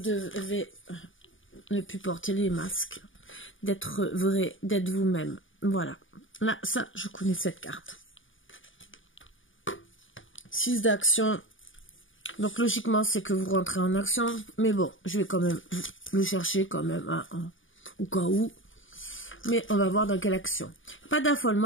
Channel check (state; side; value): late; right; 0.57 ms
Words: ne plus porter les masques. D'être vrai, d'être vous-même. Voilà. Là, ça, je connais cette carte. 6 d'action. Donc logiquement, c'est que vous rentrez en action. Mais bon, je vais quand même le chercher quand même au cas où. Mais on va voir dans quelle action. Pas